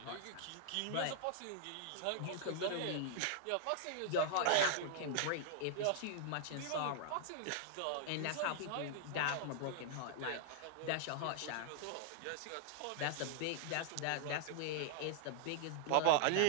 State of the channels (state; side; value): different; both; correlation -0.01